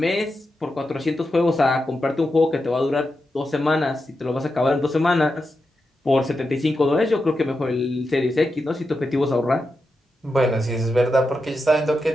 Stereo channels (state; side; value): normal; both; correlation 0.88